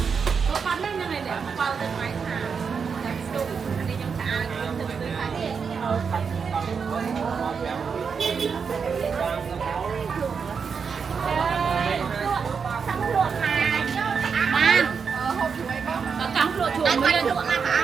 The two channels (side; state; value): left; quieter; 6.0 dB